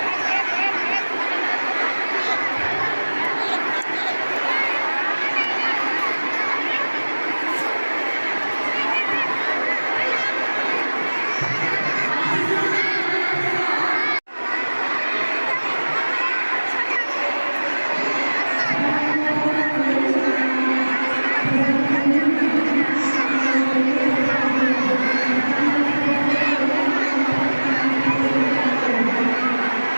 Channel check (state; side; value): inverted; both; correlation -1.00